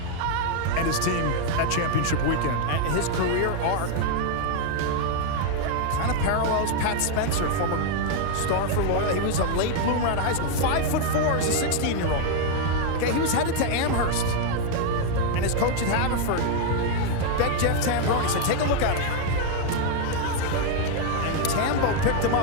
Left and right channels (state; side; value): different; both; correlation 0.00